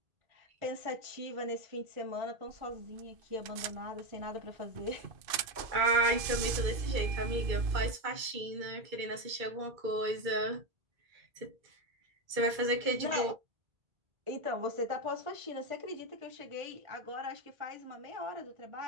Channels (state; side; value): late; left; 2.5 ms